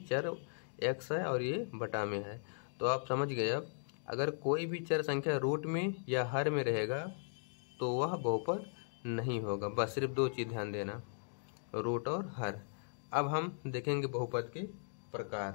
चर x है और ये बटा में है। तो आप समझ गए। अब अगर कोई भी चर संख्या रूट में या हर में रहेगा तो वह बहुपद नहीं होगा। बस सिर्फ 2 चीज ध्यान देना, रूट और हर। अब हम देखेंगे बहुपद के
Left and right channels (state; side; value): silent; right; digital silence